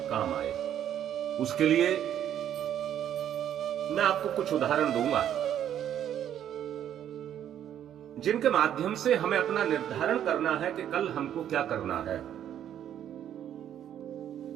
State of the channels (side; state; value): left; quieter; 10.3 dB